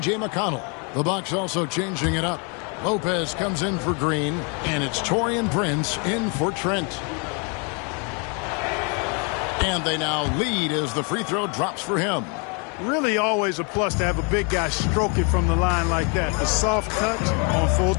McConnell. The Bucks also changing it up. Lopez comes in for Green, and it's Taurean Prince in for Trent. And they now lead as the free throw drops for him. Really always a plus to have a big guy stroke it from the line like that. The soft touch on full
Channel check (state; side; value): quieter; right; 35.3 dB